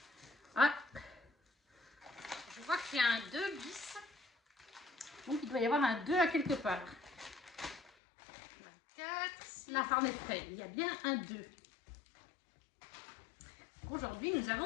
Ah, je vois qu'il y a un 2 bis. Donc, il doit y avoir un 2 à quelque part. 24, la Harney Frey. Il y a bien un 2. Aujourd'hui, nous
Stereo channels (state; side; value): drops out; right; at 7.9 s